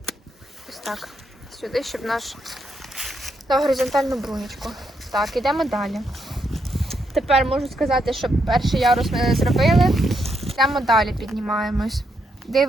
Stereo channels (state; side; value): normal; both; correlation 0.79